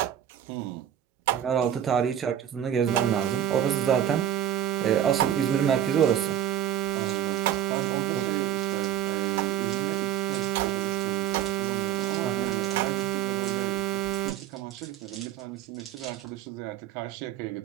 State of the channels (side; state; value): left; quieter; 10.6 dB